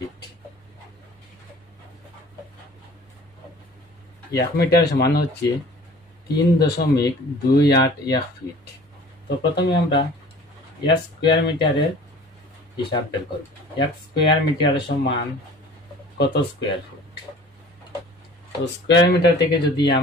1 মিটার সমান হচ্ছে 3.281 ফিট। তো প্রথমে আমরা 1 স্কোয়ার মিটারের হিসাব বের করব। 1 স্কোয়ার মিটার সমান কত স্কোয়ার ফুট। তো স্কোয়ার মিটার থেকে যদি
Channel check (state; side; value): normal; both; correlation 0.47